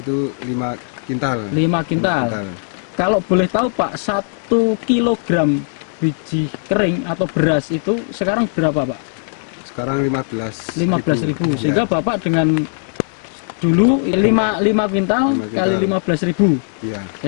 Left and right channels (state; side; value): silent; right; digital silence